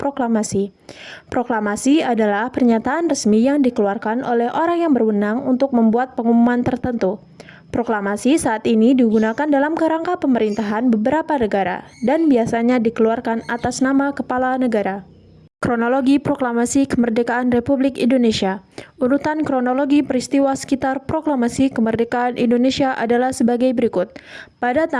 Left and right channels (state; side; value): identical; both; correlation 1.00